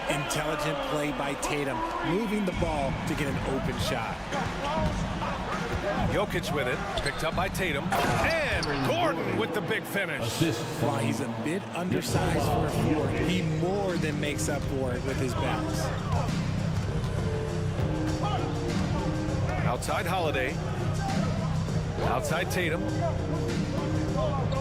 Intelligent play by Tatum, moving the ball to get an open shot. Jokic with it, picked up by Tatum. And Gordon with the big finish. While he's a bit undersized for a forward, he more than makes up for it with his bounce. Outside Holiday. Outside Tatum.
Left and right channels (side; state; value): both; identical; correlation 1.00